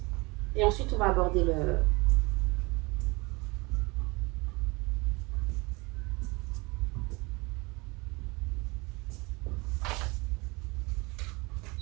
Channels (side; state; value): left; quieter; 25.6 dB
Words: et ensuite on va aborder le...